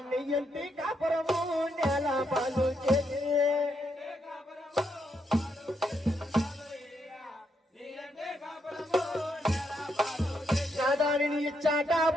నెయ్యంటి కాపురము నేల పాలు చేసి నాదా నేను ఇచ్చాట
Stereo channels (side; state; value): both; normal; correlation 0.78